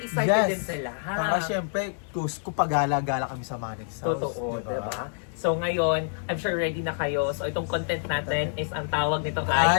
din sila. Ha? Saka syempre, kung pagala-gala kami sa Manix House. Totoo, diba? So ngayon, I'm sure ready na kayo. So itong content natin is ang tawag nito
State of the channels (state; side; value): silent; right; digital silence